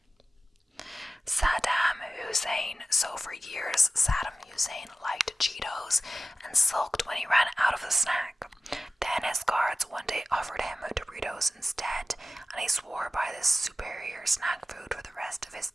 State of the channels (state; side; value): normal; both; correlation 0.95